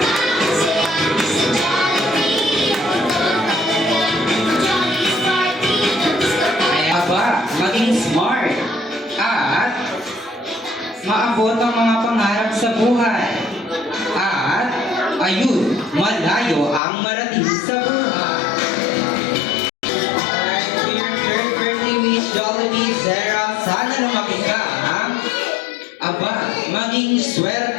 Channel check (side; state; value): right; drops out; at 16.8 s